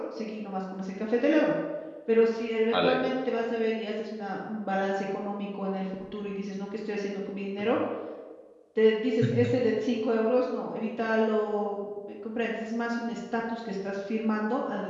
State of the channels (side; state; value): both; identical; correlation 1.00